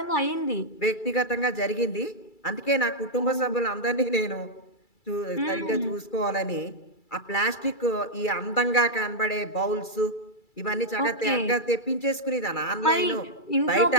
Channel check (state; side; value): late; right; 2.3 ms